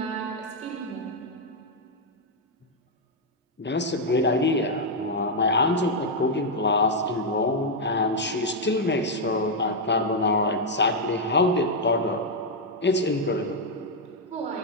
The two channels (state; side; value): normal; both; correlation -0.01